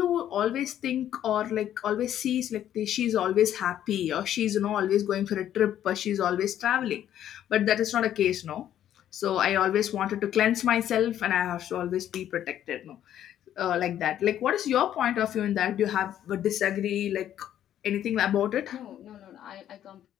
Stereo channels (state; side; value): quieter; right; 11.0 dB